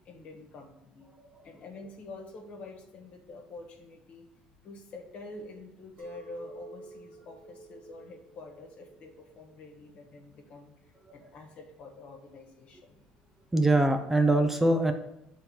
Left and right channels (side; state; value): both; normal; correlation 0.84